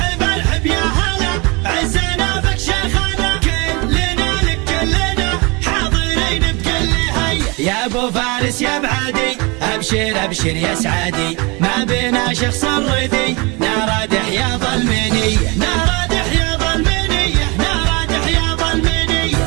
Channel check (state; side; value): quieter; left; 27.8 dB